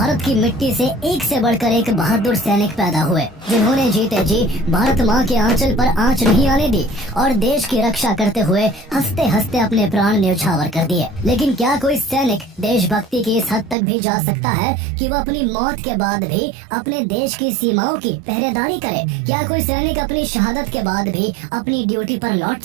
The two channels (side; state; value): left; drops out; at 13.8 s